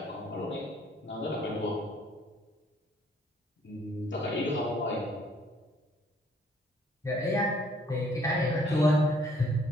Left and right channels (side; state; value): both; normal; correlation 0.62